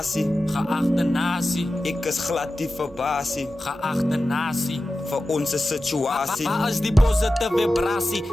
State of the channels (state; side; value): normal; both; correlation 0.93